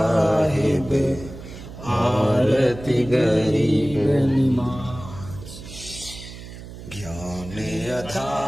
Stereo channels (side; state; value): right; noise; hum, 14 dB below the sound